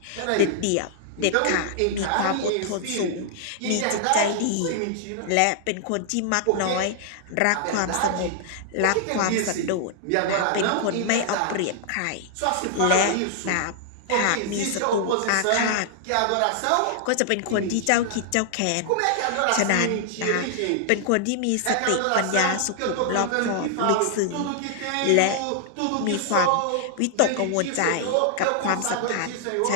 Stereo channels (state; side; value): different; both; correlation -0.01